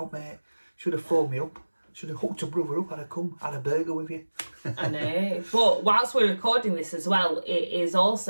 mate. Should have phoned me up. Should have hooked a brother up. I'd have come, had a burger with you. I know. But whilst we're recording this as well, it is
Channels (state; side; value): inverted; both; correlation -1.00